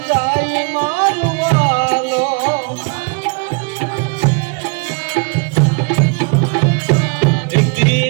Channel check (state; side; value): quieter; left; 35.0 dB